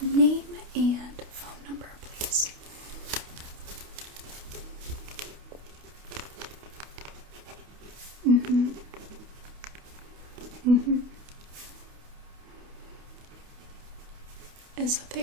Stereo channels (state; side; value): late; left; 28 ms